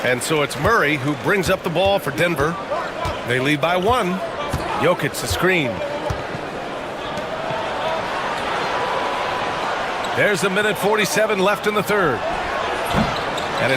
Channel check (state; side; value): identical; both; correlation 1.00